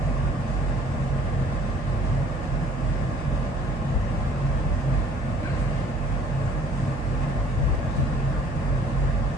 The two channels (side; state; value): both; normal; correlation 0.56